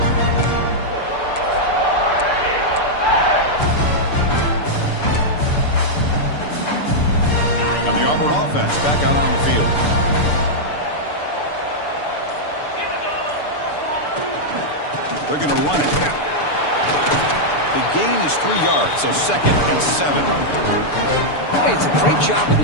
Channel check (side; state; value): right; late; 6.8 ms